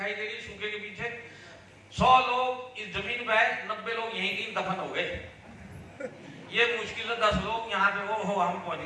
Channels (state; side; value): identical; both; correlation 1.00